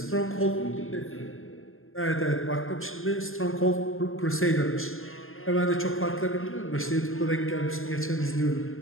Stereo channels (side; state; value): right; late; 0.60 ms